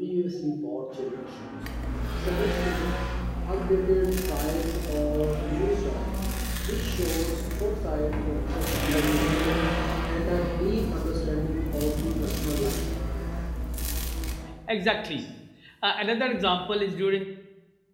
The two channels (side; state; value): both; identical; correlation 1.00